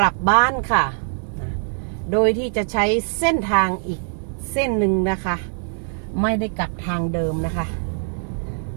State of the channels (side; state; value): left; silent; 57 dB below the other